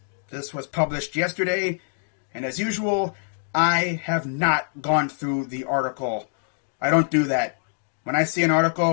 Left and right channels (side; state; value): right; silent; digital silence